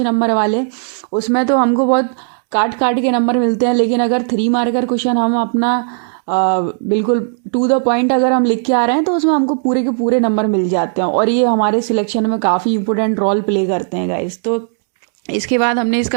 नंबर वाले, उसमें तो हमको बहुत काट काट के नंबर मिलते हैं। लेकिन अगर 3 मार्कर क्वेश्चन हम अपना बिल्कुल टू द पॉइंट अगर हम लिख के आ रहे हैं तो उसमें हमको पूरे के पूरे नंबर मिल जाते हैं। और ये हमारे सिलेक्शन में काफ़ी इंपॉर्टेंट रोल प्ले करते हैं गाइस। तो इसके बाद हमने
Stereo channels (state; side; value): silent; left; digital silence